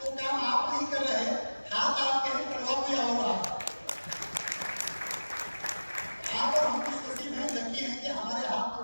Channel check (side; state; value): both; inverted; correlation -1.00